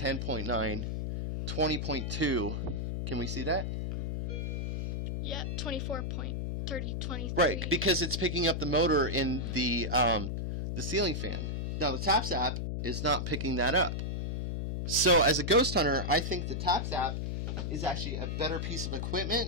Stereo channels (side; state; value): left; noise; hum, 2 dB below the sound